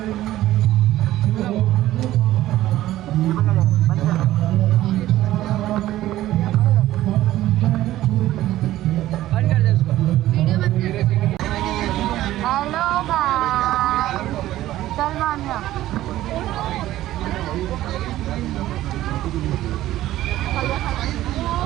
हेलो भाई चल मान्या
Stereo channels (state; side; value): quieter; left; 14.6 dB